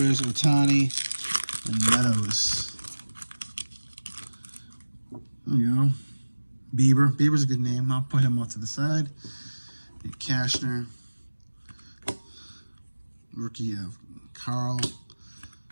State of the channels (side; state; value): both; inverted; correlation -1.00